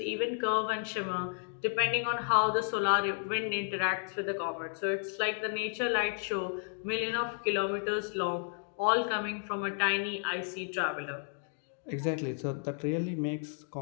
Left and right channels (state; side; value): silent; right; 56 dB below the other